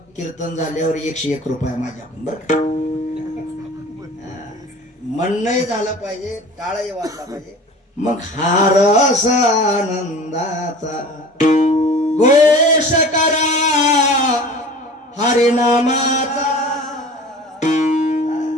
कीर्तन झाल्यावर 101 रुपये माझ्याकडून. बरं का, म्हणणंही झालं पाहिजे, टाळही वाजला पाहिजे. मग हा रस आनंदाचा घोष करा हरिनामाचा.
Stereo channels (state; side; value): normal; both; correlation 0.41